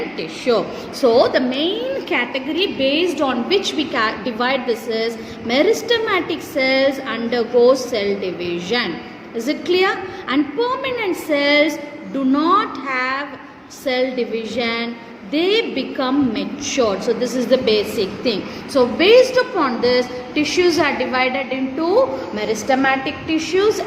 tissue. So the main category based on which we divide this is meristematic cells undergo cell division. Is it clear? And permanent cells do not have cell division. They become matured. So this is the basic thing. So based upon this, tissues are divided into meristematic tissues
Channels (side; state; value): both; identical; correlation 1.00